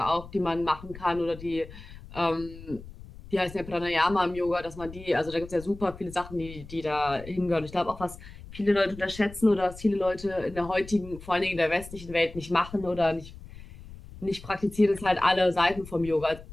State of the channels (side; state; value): left; noise; rumble, 16 dB below the sound